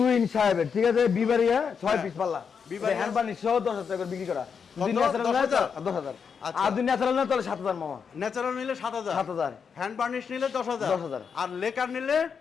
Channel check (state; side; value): quieter; right; 6.4 dB